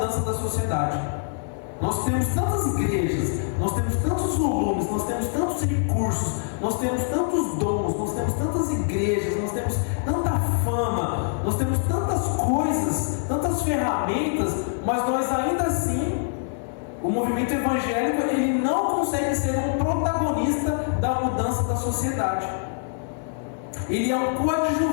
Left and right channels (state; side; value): silent; right; digital silence